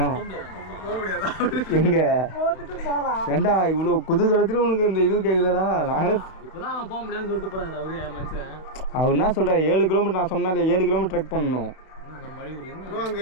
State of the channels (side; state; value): right; late; 32 ms